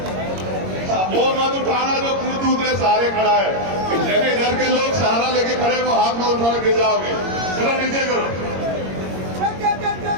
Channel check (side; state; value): left; late; 22 ms